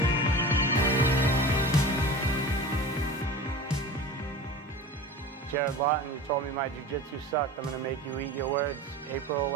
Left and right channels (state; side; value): normal; both; correlation 0.34